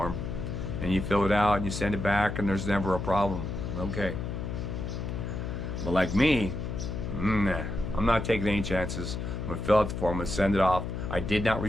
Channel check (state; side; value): noise; left; hum, 4 dB below the sound